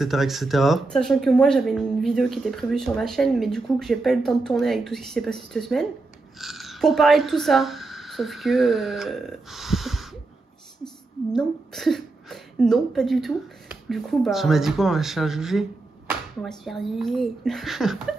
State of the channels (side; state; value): left; quieter; 3.4 dB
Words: etc. Sachant que moi j'avais une vidéo qui était prévue sur ma chaîne, mais du coup que j'ai pas eu le temps de tourner avec tout ce qui s'est passé cette semaine. Pour parler de tout ça. Sauf que... non. Non, pas du tout. Du coup, Tu m'as dit quoi, on va se faire juger? On va se faire juger. Je